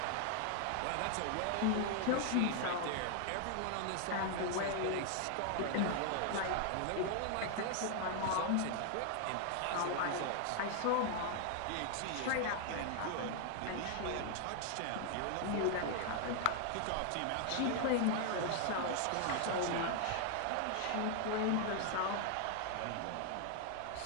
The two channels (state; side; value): different; both; correlation 0.00